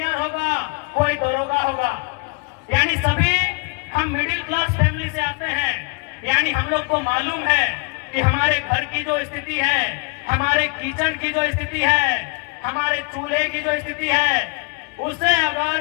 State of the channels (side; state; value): right; quieter; 32.3 dB